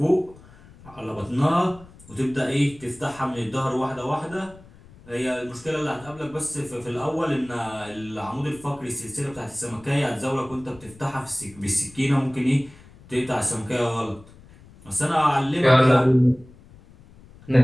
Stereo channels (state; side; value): noise; left; rumble, 23 dB below the sound